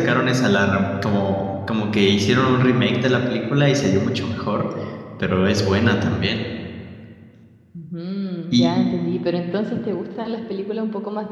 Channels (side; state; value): both; identical; correlation 1.00